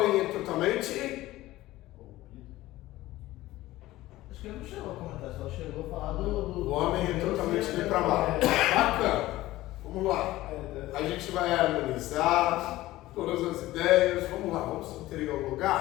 é totalmente. Acho que ele não chegou a comentar, só chegou a falar do. O homem é totalmente depravado. Bacana. Vamos lá. A gente vai harmonizar todas as ideias. Vamos lá, vamos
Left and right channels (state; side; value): quieter; right; 16.8 dB